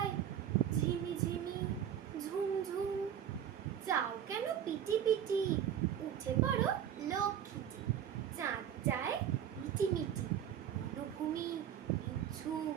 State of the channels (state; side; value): quieter; left; 9.7 dB